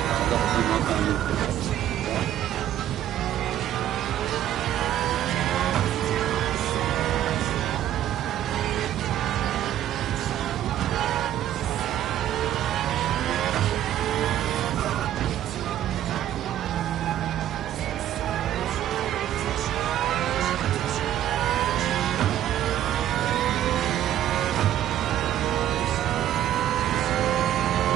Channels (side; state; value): left; quieter; 11.8 dB